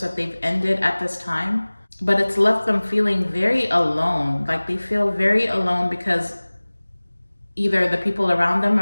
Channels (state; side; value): inverted; both; correlation -1.00